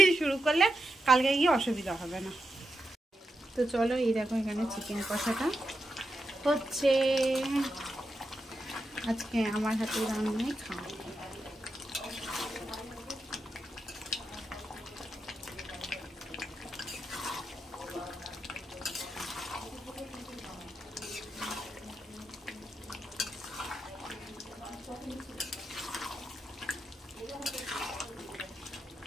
শুরু করলে কালকে গিয়ে অসুবিধা হবে না। তো চলো, এই দেখো এখানে চিকেন কষাটা হচ্ছে, আজকে আমার হাতে রান্নাই খাওয়া।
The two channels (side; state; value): both; normal; correlation 0.87